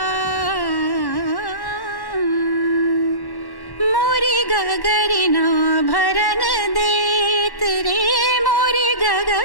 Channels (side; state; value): right; late; 1.1 ms